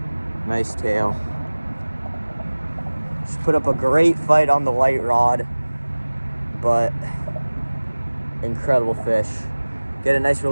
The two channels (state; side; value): inverted; both; correlation -1.00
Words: Nice tail. Just put up a great fight on the light rod, but incredible fish. Get a nice